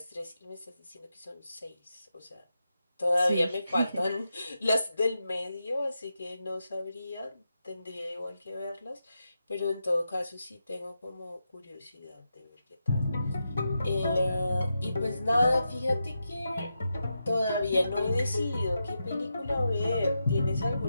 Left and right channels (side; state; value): both; inverted; correlation -0.87